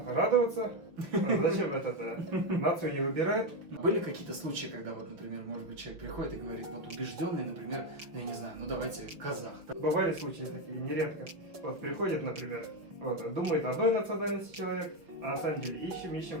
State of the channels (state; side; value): late; left; 5.8 ms